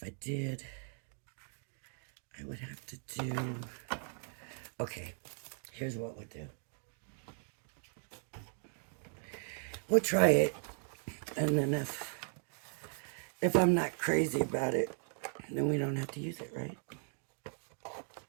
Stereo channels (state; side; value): silent; left; 53 dB below the other